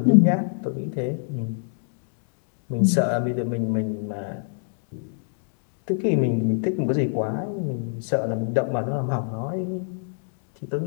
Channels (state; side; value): silent; right; 61 dB below the other